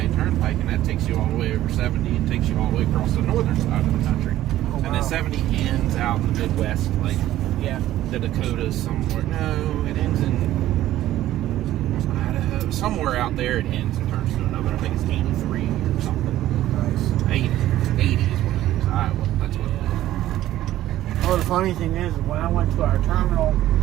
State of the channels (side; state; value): left; quieter; 13.9 dB